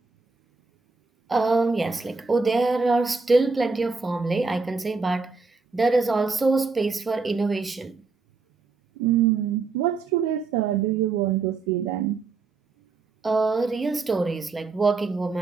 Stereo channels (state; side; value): quieter; left; 4.3 dB